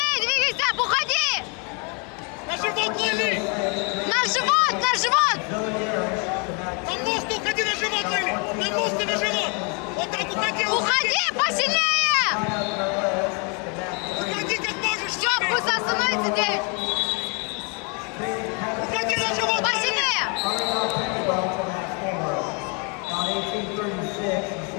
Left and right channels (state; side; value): quieter; right; 34.7 dB